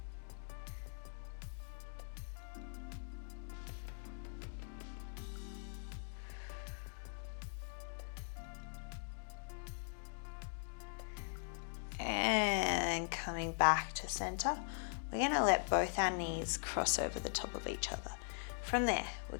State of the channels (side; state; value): right; silent; digital silence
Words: coming back to center, we're going to let both our knees cross over the top of each other. From there, we're